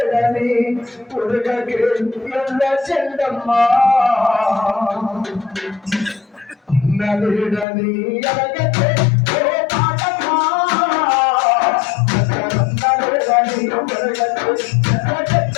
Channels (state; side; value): drops out; right; at 7.7 s